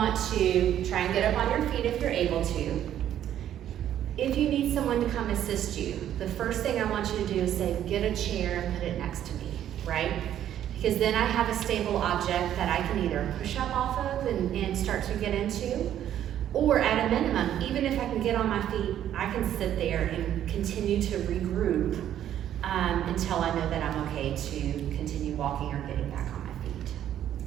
to try and get up on your feet if you're able to. If you need someone to come assist you, the first thing I want you to do is say, get a chair and put it next to me, right? Because then I have a stable object that I can either push up off of and start to get into, or at a minimum, even if I can get on my feet, I can sit there and continue to regroup until I know that I'm okay to continue walking or getting back on my feet.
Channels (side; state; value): left; quieter; 11.0 dB